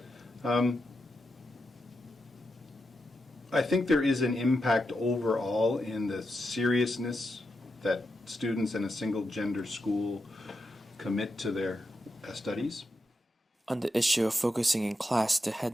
I think there is an impact overall in the seriousness that students in a single-gender school commit to their studies. On the issue of focusing in class, the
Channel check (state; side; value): normal; both; correlation 0.86